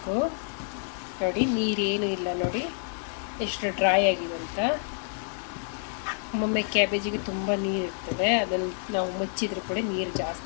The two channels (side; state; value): right; silent; 59 dB below the other